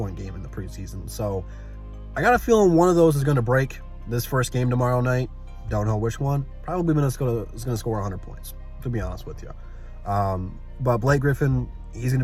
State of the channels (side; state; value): both; identical; correlation 1.00